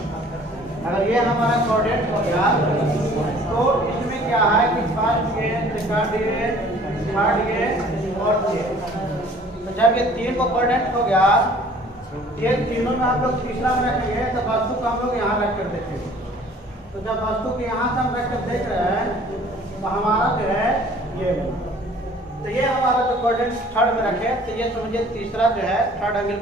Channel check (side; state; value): both; normal; correlation 0.52